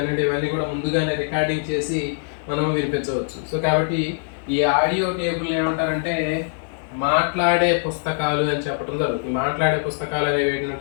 ఇవన్నీ కూడా ముందుగానే రికార్డింగ్ చేసి మనం వినిపించవచ్చు. సో కాబట్టి ఈ ఆడియో టేబుల్ ఏమంటారంటే మాట్లాడే పుస్తకాలు అని చెప్పడం జరుగుతుంది. మాట్లాడే పుస్తకాలు అనేవి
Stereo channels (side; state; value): right; silent; 64 dB below the other